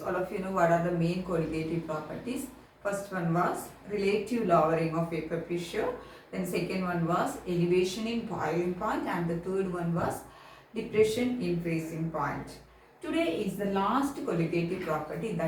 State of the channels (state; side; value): identical; both; correlation 1.00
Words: All of you know what are the main colligative properties. First one was relative lowering of vapor pressure. Then second one was elevation in boiling point, and the third one was depression in freezing point. Today is the last colligative property,